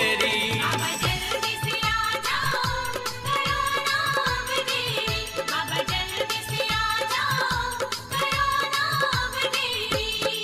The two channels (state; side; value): identical; both; correlation 1.00